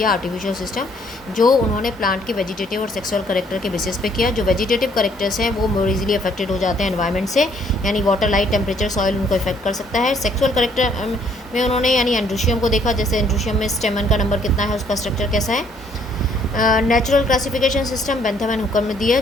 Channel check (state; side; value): normal; both; correlation 0.65